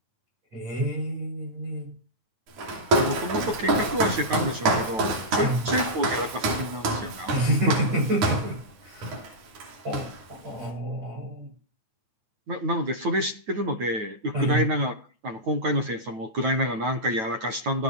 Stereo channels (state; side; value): late; left; 9.2 ms